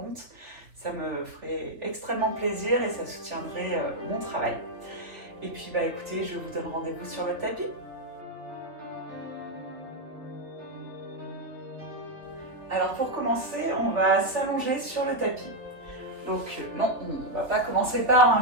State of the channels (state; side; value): late; left; 3.2 ms